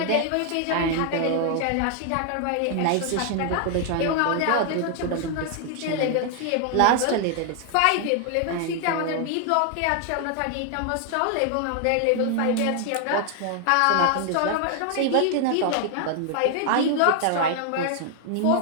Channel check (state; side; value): different; both; correlation 0.00